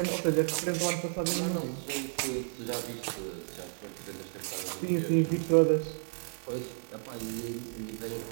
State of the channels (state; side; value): silent; left; digital silence